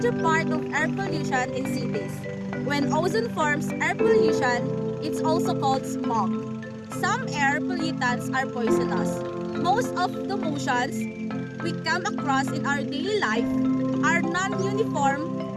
part of air pollution in cities. When ozone forms air pollution, it's also called smog. Some air pollutants are poisonous. Most of the motions we come across in our daily life are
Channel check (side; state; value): both; identical; correlation 1.00